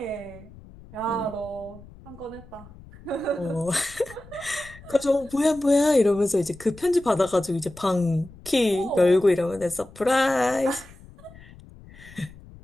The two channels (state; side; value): noise; left; rumble, 20 dB below the sound